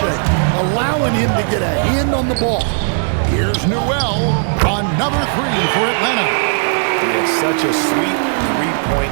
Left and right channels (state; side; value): silent; left; digital silence